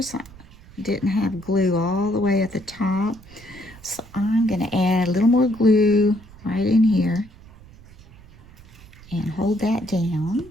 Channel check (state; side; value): noise; right; rumble, 22 dB below the sound